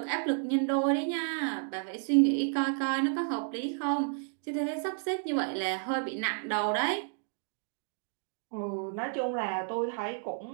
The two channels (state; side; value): silent; left; digital silence